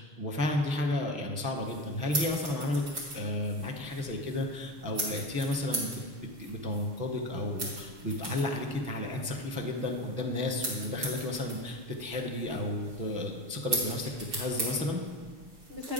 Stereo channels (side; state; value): left; late; 6.9 ms